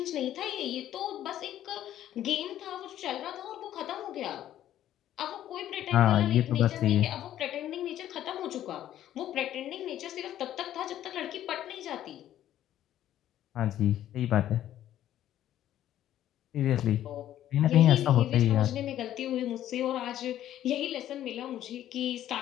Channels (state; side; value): quieter; right; 12.1 dB